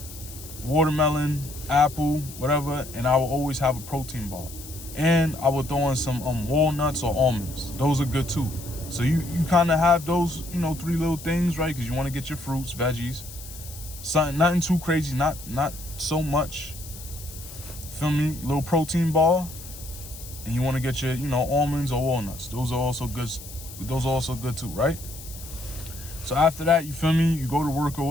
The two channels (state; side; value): noise; left; hiss, 15 dB below the sound